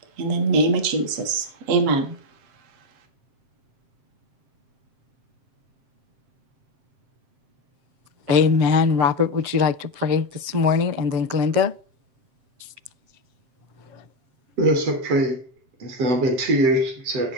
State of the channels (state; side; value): late; left; 7.6 ms